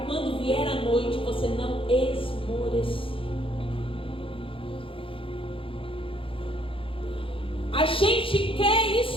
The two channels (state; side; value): late; right; 0.26 ms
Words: quando vier a noite você não esmorecer. A gente quer